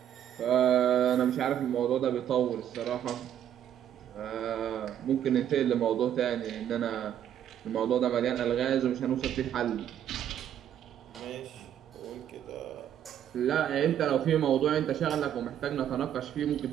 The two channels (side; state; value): left; quieter; 10.2 dB